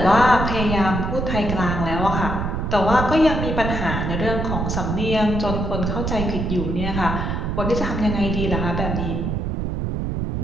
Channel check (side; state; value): right; noise; rumble, 2 dB below the sound